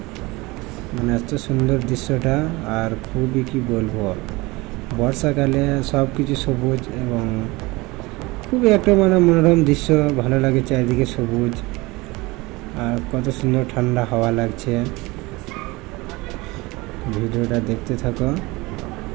মানে এত সুন্দর দৃশ্যটা। আর খুবই কি বলবো, বর্ষাকালে সব কিছু সবুজ এবং খুবই একটা মানে মনোরম দৃশ্য, ভালো লাগে, চারিদিকে সবুজ আর কত সুন্দর ঠান্ডা হাওয়া লাগছে। ভিডিওটা দেখতে থাকো।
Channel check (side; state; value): left; quieter; 22.8 dB